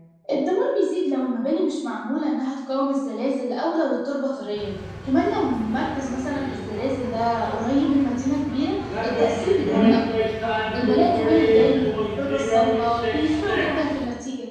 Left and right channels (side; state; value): both; identical; correlation 1.00